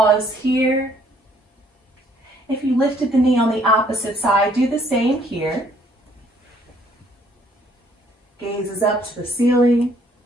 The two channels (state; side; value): normal; both; correlation 0.63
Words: here. If you lifted the knee on the opposite side, do the same here. Gaze is up to the ceiling.